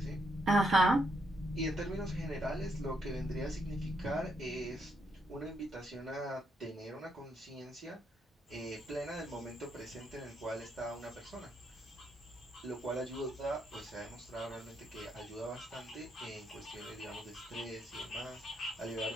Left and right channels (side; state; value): both; normal; correlation 0.77